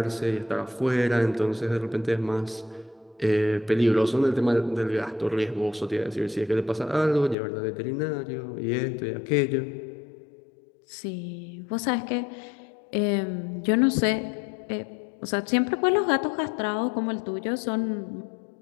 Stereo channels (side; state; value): right; drops out; at 7.4 s